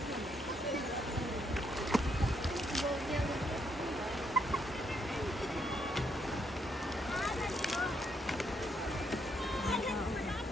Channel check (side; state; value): both; normal; correlation 0.75